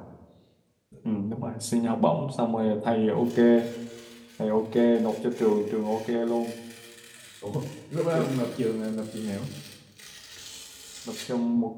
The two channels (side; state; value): both; identical; correlation 1.00